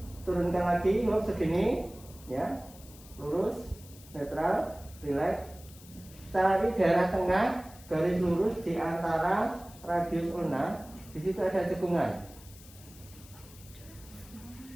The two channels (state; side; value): noise; left; hiss, 21 dB below the sound